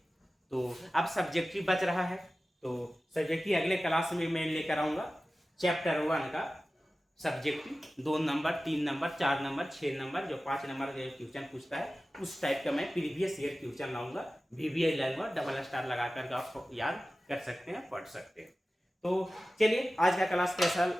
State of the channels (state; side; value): normal; both; correlation 0.96